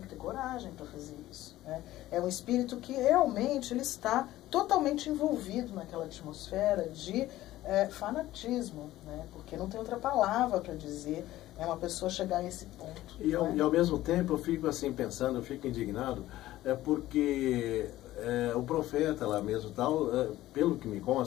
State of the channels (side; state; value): right; quieter; 15.4 dB